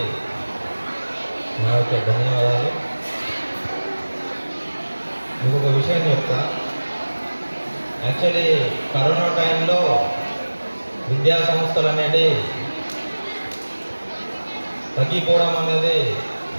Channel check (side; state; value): both; inverted; correlation -1.00